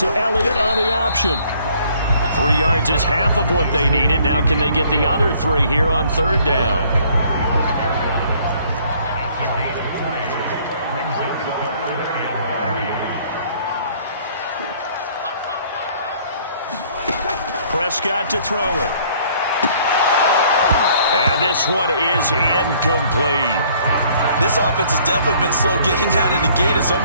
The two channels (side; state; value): both; inverted; correlation -0.60